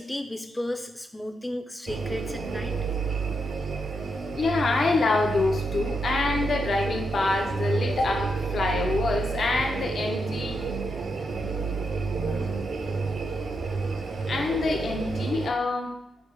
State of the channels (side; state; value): both; normal; correlation 0.82